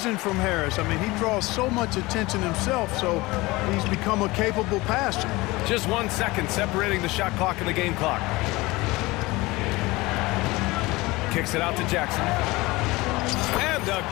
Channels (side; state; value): right; quieter; 21.5 dB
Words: from Harris. I mean, he draws so much attention himself, so he's become a capable passer. Just 1 second separating the shot clock and the game clock. Kicks it out to Jackson. And